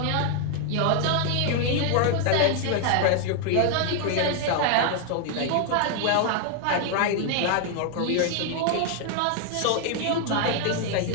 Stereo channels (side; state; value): both; different; correlation 0.00